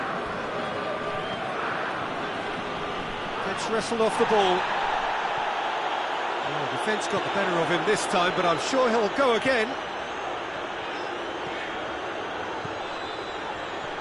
Gets wrestled off the ball. Oh, defence got the better of him this time, but I'm sure he'll go again.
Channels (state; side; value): identical; both; correlation 1.00